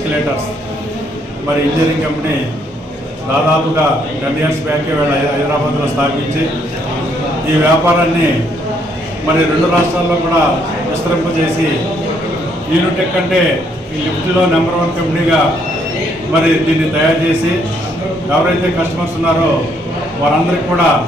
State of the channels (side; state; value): both; normal; correlation 0.70